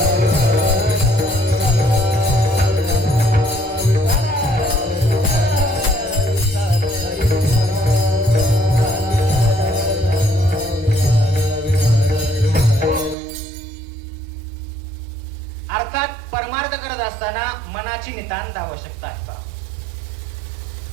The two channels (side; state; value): left; drops out; at 13.2 s